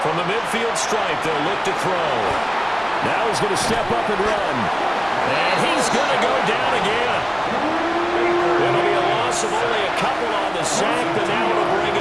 From the midfield stripe, they'll look to throw. Now he's going to step up and run. And he's going to go down again. It'll be a loss of only a couple on the sack, but now it'll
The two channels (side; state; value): right; noise; rumble, 25 dB below the sound